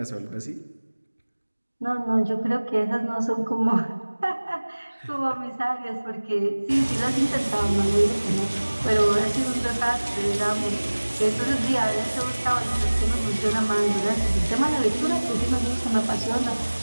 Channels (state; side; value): inverted; both; correlation -1.00